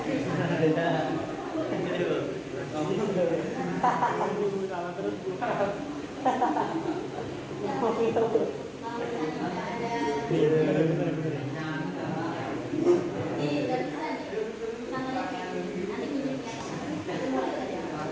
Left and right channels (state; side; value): identical; both; correlation 1.00